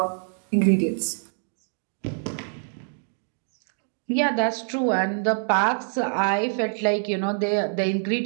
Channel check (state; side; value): silent; left; digital silence